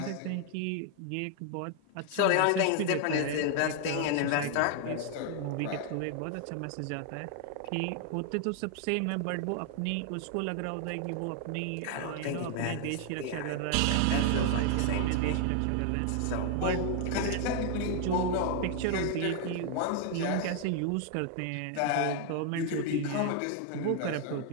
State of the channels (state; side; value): different; both; correlation 0.00